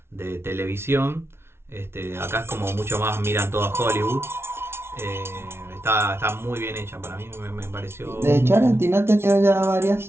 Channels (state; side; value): late; left; 0.12 ms